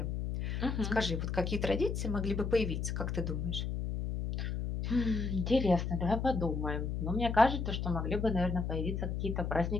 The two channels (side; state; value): left; noise; hum, 2 dB below the sound